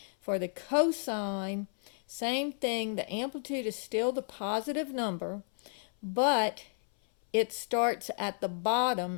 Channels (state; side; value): silent; right; 56 dB below the other